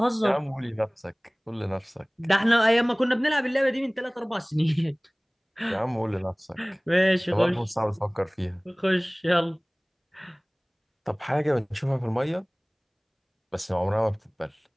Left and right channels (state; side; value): identical; both; correlation 1.00